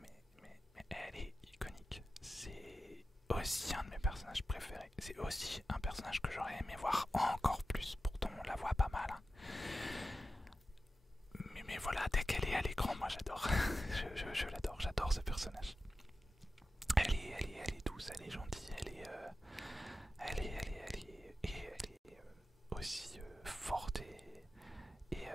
elle est iconique. C'est aussi un de mes personnages préférés. C'est aussi un personnage que j'aurais aimé voir encore plus. Pourtant, on la voit pas mal. Hein. Mais voilà, dès qu'elle est à l'écran, moi j'adore. je l'adore, j'adore ce personnage. Elle est douce, elle est gentille, elle est aussi forte et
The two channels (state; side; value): normal; both; correlation 0.93